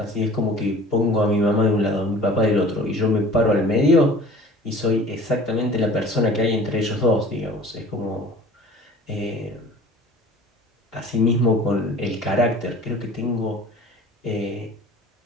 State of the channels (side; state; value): both; normal; correlation 0.45